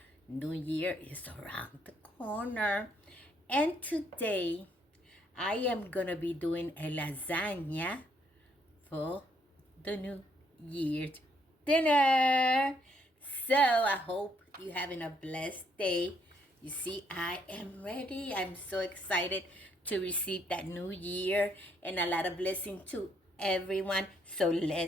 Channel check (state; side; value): normal; both; correlation 0.71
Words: New Year is around the corner. And today I am going to be doing a lasagna for the New Year's dinner. So I hope you're having a blessed day. You see, I am ready. I'm so excited to receive that new year and a lot of blessing to everyone. So